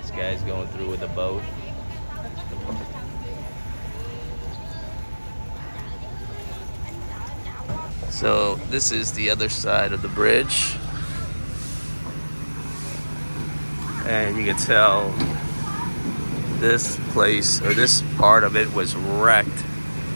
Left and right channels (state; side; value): inverted; both; correlation -1.00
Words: guy's going through with a boat. So this is the other side of the bridge, and you can tell this place, or this part of it, was wrecked